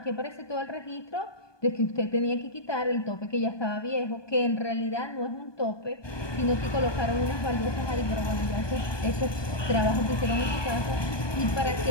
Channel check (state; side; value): late; right; 1.2 ms